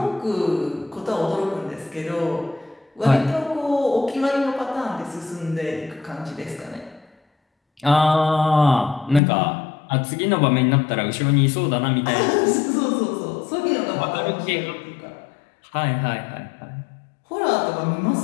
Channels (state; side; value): drops out; right; at 9.2 s